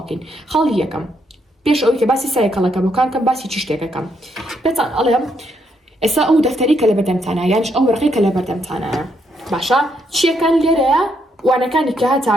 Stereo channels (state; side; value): normal; both; correlation 0.76